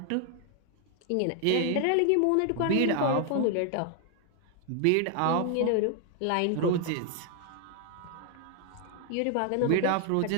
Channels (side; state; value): both; different; correlation 0.00